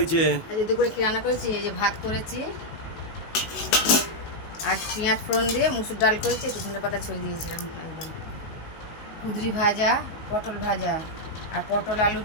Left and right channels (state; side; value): late; right; 19 ms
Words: আজকে দুপুরে কি রান্না করেছি? এই যে ভাত করেছি, আর পেঁয়াজ ফোড়ন দিয়ে মুসুর ডাল করেছি, একটু ধনে পাতা ছড়িয়ে দিয়েছিলাম একদম। কুঁদরি ভাজা, পটল ভাজা, আর পটল আলু